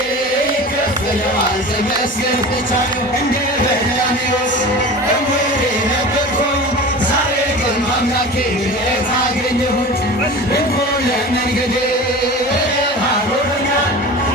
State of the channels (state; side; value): normal; both; correlation 0.34